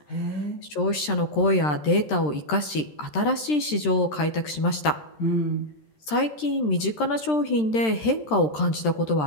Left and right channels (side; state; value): right; late; 13 ms